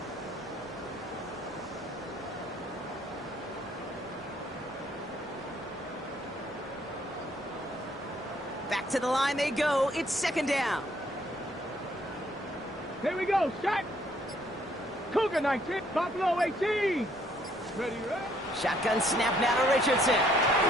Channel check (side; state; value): both; normal; correlation 0.65